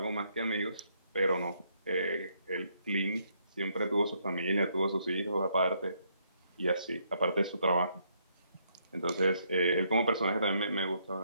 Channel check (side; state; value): both; inverted; correlation -0.73